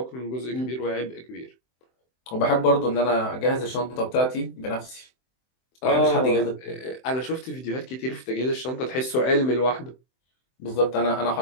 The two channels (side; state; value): right; late; 23 ms